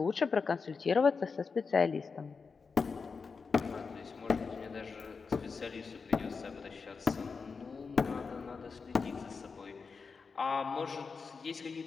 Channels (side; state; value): right; quieter; 5.0 dB